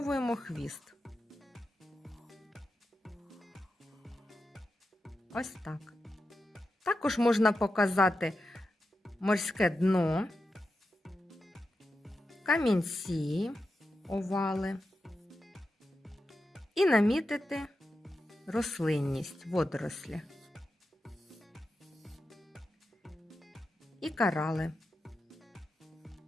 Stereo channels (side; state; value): both; normal; correlation 0.89